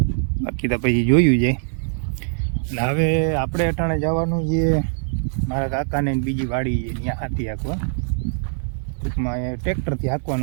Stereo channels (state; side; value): silent; left; 64 dB below the other